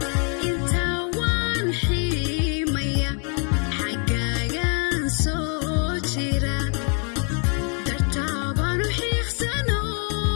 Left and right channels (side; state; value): right; quieter; 39.2 dB